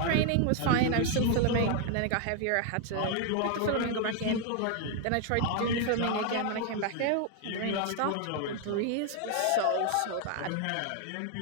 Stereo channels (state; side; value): different; both; correlation 0.01